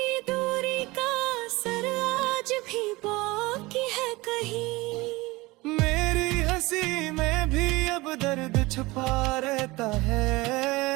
दूरी का असर आज भी बाकी है कहीं। मेरी हंसी में भी अब दर्द छुपा रहता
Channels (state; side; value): quieter; left; 21.7 dB